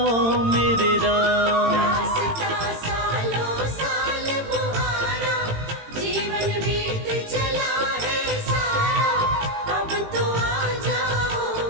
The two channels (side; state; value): left; late; 18 ms